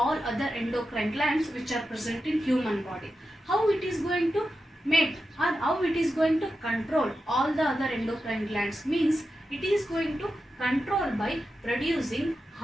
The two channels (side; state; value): both; normal; correlation 0.90